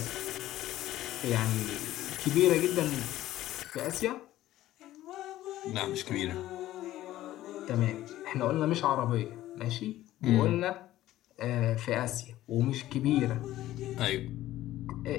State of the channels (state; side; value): quieter; right; 14.6 dB